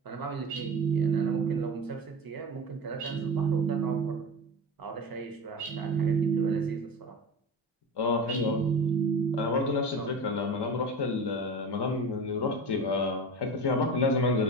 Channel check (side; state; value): both; normal; correlation 0.29